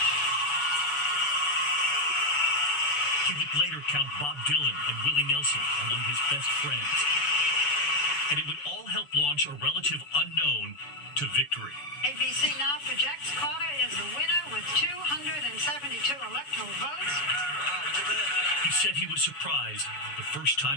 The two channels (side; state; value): right; late; 7.0 ms